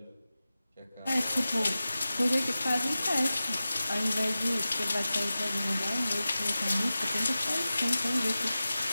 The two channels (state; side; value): inverted; both; correlation -0.95